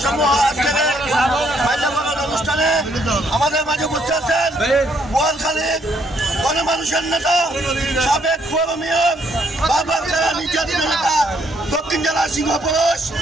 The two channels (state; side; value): normal; both; correlation 0.70